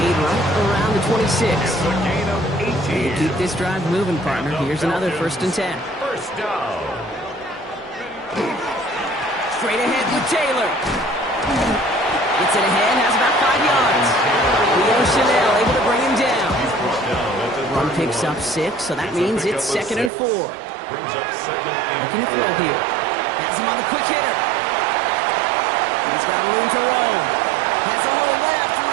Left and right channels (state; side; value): drops out; left; at 20.1 s